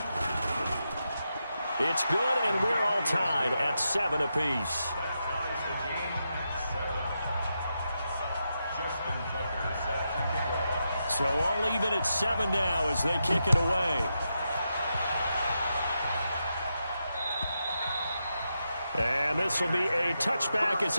It's good, and we're all tied at 7 apiece. So all even at 7 now as they kick it away. And this will be a touchback as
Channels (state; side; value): inverted; both; correlation -0.86